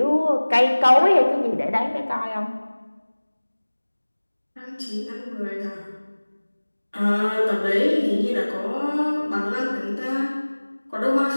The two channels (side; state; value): both; inverted; correlation -1.00